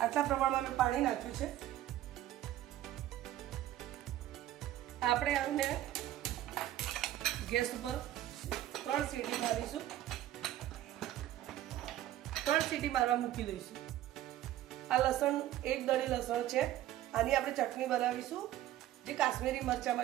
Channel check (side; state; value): left; quieter; 13.4 dB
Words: પ્રમાણમાં મેં પાણી નાખ્યું છે। આપણે આને ગેસ ઉપર 3 સીટી મારીશું। 3 સીટી મારવા મૂકી દઈશું। આ લસણ, એક દળી લસણ છે। આની આપણે ચટણી બનાવીશું, જે કાશ્મીરી